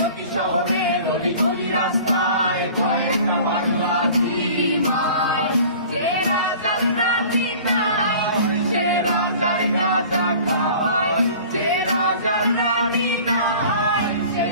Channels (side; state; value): both; inverted; correlation -0.45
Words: শহরের অলি গলি রাস্তায় কয়েকটা বাংলা ঝিমায়। যে রাজার রানী নাই, সে রাজার গাঁজা খায়। যে রাজার রানী নাই, সে